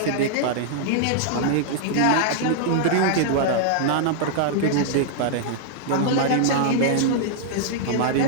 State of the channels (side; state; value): both; different; correlation -0.01